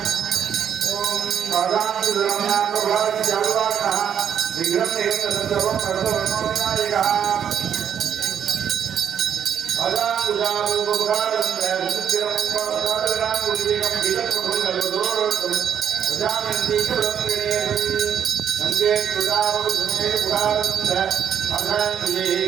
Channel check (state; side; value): quieter; left; 8.6 dB